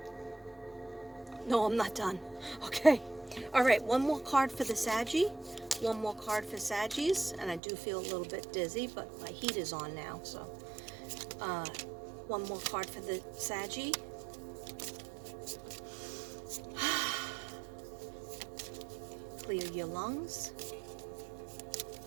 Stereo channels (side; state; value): left; drops out; at 7.6 s